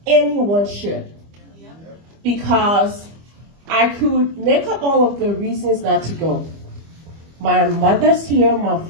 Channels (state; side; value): late; left; 25 ms